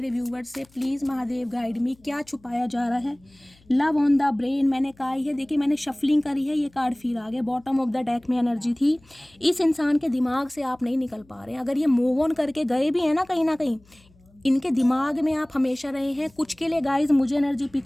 व्यूवर्स से, प्लीज़ महादेव गाइड मी, क्या छुपाया जा रहा है। लव ऑन द ब्रेन मैंने कहा है, देखिए मैंने शफलिंग करी है, ये कार्ड फिर आ गया। बॉटम ऑफ द डेक में एनर्जी थी, इस इंसान के दिमाग से आप नहीं निकल पा रहे हैं। अगर ये मूव ऑन करके गए भी हैं ना कहीं इनके दिमाग में आप हमेशा रहे हैं। कुछ के लिए गाइज मुझे एनर्जी पिक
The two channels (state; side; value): noise; left; hum, 30 dB below the sound